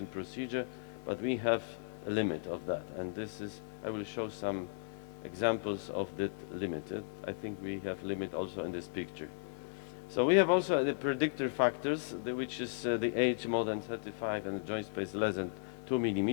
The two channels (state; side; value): silent; right; digital silence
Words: procedure, but we have a limit of that, and this is, I will show some examples of that limit. I think we have limit also in this picture. So we have also the predictor factors, which is the age more than 35 and the joint space less than 2